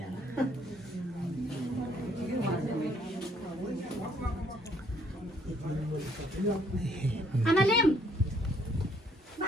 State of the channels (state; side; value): normal; both; correlation 0.66